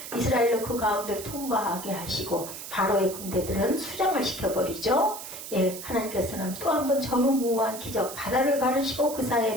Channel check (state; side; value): noise; right; hiss, 10 dB below the sound